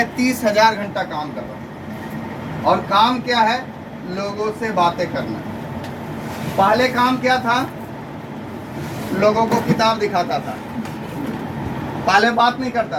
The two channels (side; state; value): both; identical; correlation 1.00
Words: 30,000 घंटा काम कर रहा हूँ। और काम क्या है? लोगों से बातें करना। पहले काम क्या था? लोगों को किताब दिखाता था। पहले बात नहीं